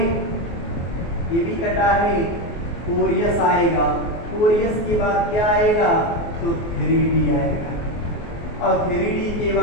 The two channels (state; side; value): late; right; 24 ms